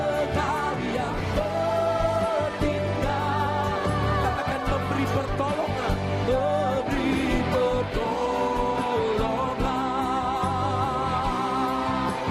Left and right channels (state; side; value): identical; both; correlation 1.00